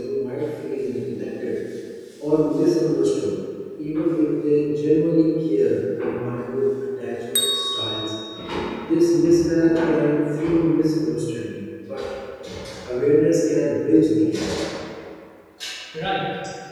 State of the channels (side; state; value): both; identical; correlation 1.00